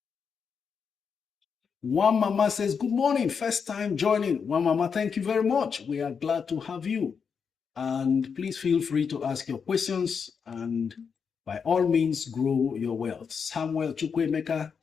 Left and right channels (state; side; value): quieter; right; 6.3 dB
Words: One Mama says, good morning, first time joining. One Mama, thank you very much. We are glad to have you. And please feel free to ask your questions and by all means grow your wealth. Samuel Chukwemeka